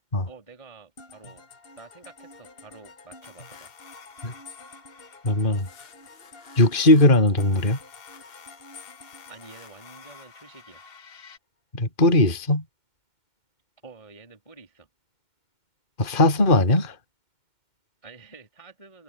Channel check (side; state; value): right; late; 2.1 ms